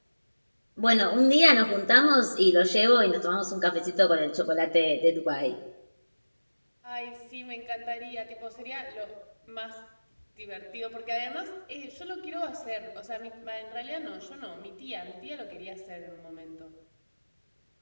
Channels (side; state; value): both; inverted; correlation -1.00